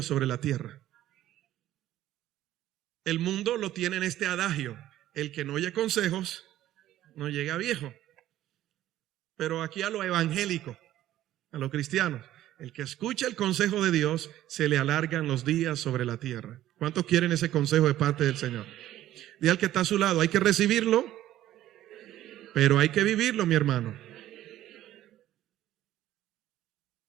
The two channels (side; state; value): left; quieter; 13.5 dB